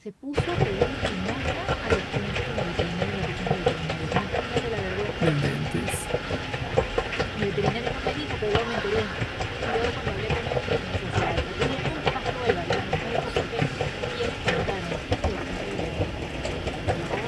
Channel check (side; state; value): both; identical; correlation 1.00